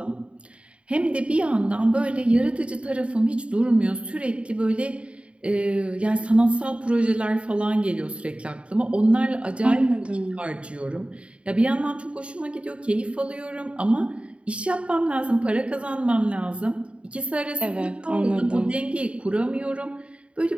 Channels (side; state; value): left; late; 0.060 ms